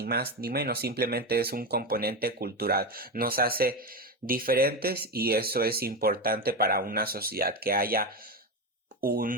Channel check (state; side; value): normal; both; correlation 0.15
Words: más ni menos, simplemente es un componente cultural, nos hace diferentes y eso es importante para una sociedad, que haya